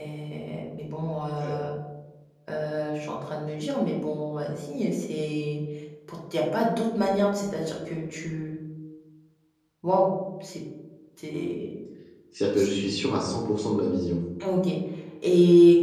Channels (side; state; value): both; identical; correlation 1.00